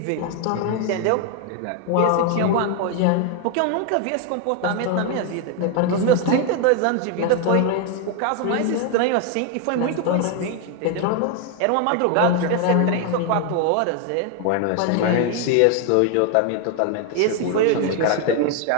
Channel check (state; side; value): different; both; correlation 0.00